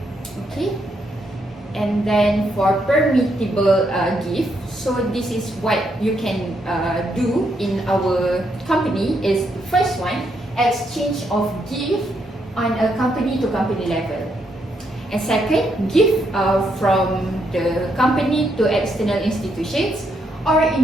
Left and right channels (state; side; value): normal; both; correlation 0.77